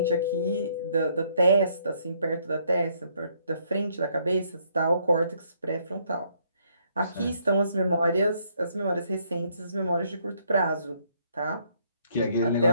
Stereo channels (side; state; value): both; inverted; correlation -0.68